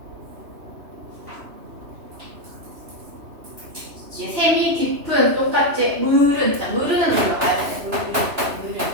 셈이 깊은 똑같이 물은 자 물은 올라가야 돼. 물은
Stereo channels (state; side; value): late; left; 3.0 ms